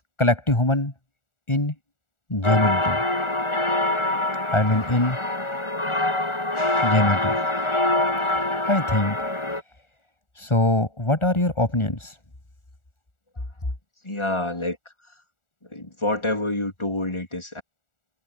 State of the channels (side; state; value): right; late; 1.4 ms